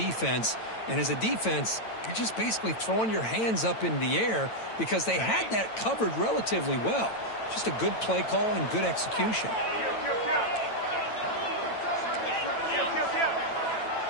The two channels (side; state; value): right; late; 9.0 ms